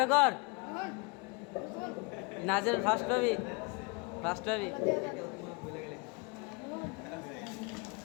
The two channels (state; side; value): quieter; right; 30.3 dB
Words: কর নাজেল ফার্স্ট হবি